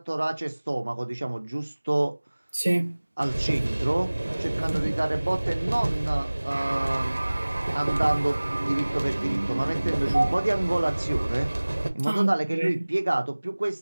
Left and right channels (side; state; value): both; inverted; correlation -1.00